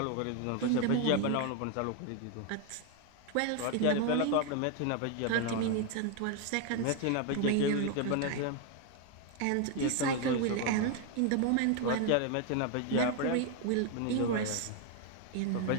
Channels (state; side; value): different; both; correlation 0.01